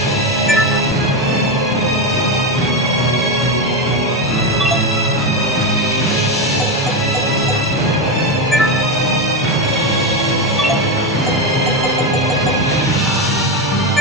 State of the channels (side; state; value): both; normal; correlation 0.12